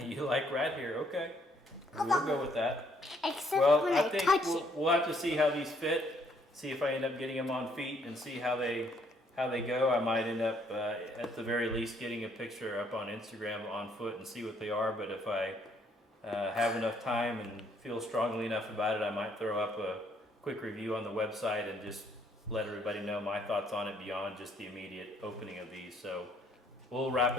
You like rat hair, okay. We'll go with that. Except Well, when I I think touch we'll, it. we'll have to see how these fit, see if I end up getting them on feet and see how they go. I might end up, at the very least, getting a picture up on Instagram on foot and see what they are. But if I have enough time and feel strongly enough about it, I might throw up a quick review on the website and just let everybody know my thoughts on it beyond just the immediate opening of these. So we'll wrap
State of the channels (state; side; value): normal; both; correlation 0.67